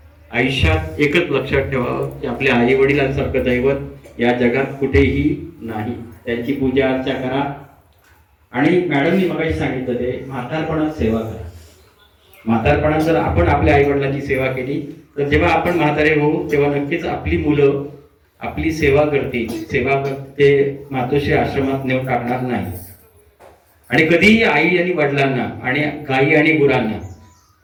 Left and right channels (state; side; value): identical; both; correlation 1.00